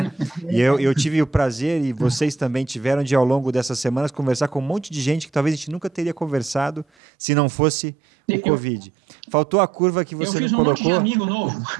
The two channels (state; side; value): drops out; left; at 6.9 s